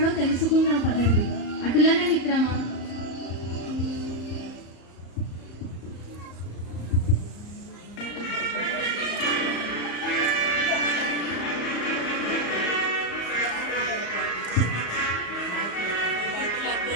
తెలుసుకుందాం పదండి. అటులనే మిత్రమా.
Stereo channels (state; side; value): late; right; 34 ms